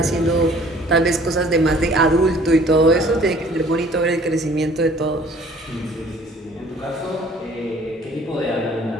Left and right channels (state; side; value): normal; both; correlation 0.54